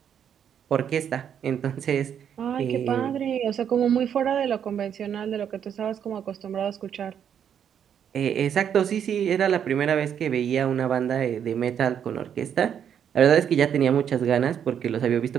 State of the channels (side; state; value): left; quieter; 8.6 dB